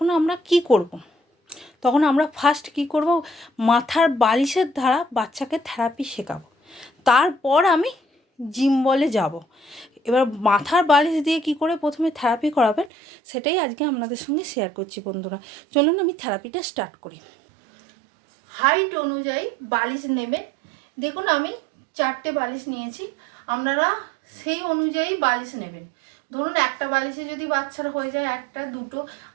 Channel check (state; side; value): drops out; left; at 12.9 s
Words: আমরা কি করব? তখন আমরা ফার্স্ট কি করব, মাথার বালিশের দ্বারা বাচ্চাকে থেরাপি শেখাবো। তারপর আমি জিম বলে যাব। এবার মাথার বালিশ দিয়ে কি করে প্রথমে থেরাপি করাবেন, সেটাই আজকে আপনাদের সঙ্গে শেয়ার করছি। বন্ধুরা, চলুন আমি থেরাপিটা স্টার্ট করি। হাইট অনুযায়ী বালিশ নেবেন। দেখুন, আমি 4টে বালিশ নিয়েছি, আপনারা সেই অনুযায়ী বালিশ নেবেন। ধরুন একটা বালিশে যদি বাচ্চার হয়ে যায় একটা দুটো,